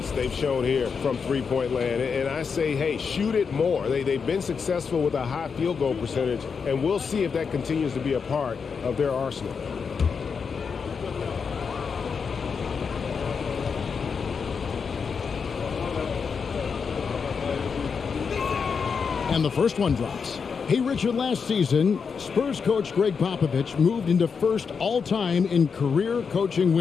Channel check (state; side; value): quieter; right; 5.8 dB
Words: they've shown here from three-point land. And I say, hey, shoot it more. They've been successful with a high field goal percentage, and we'll see if that continues to be a part of their arsenal. And the first one drops. Hey, Richard, last season, Spurs coach Greg Popovich moved into first all-time in career coaching